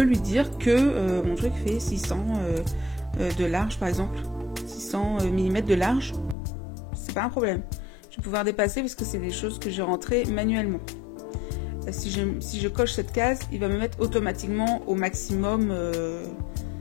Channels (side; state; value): right; drops out; at 6.4 s